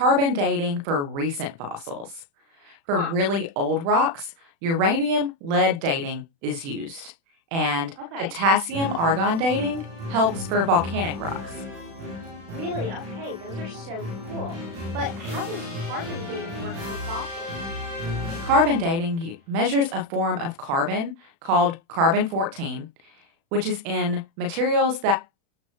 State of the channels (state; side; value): late; left; 36 ms